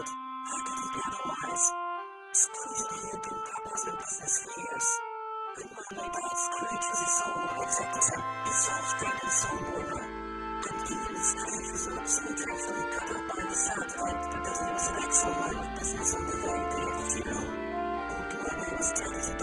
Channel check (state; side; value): identical; both; correlation 1.00